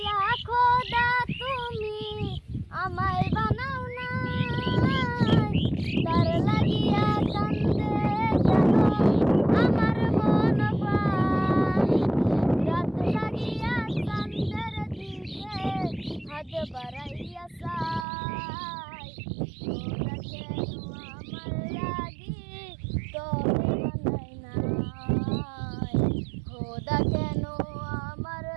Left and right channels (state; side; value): drops out; left; at 18.1 s